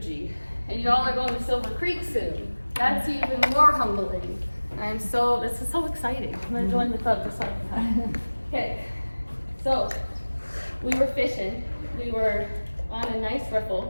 And y'all are going to Silver Creek soon. That's even more humbling. This is so exciting. I'm gonna join the club for some. Okay, so we were fishing. We were on a nice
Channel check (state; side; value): inverted; both; correlation -1.00